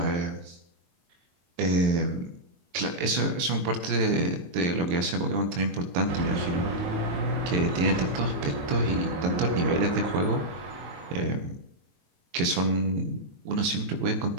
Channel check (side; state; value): left; late; 23 ms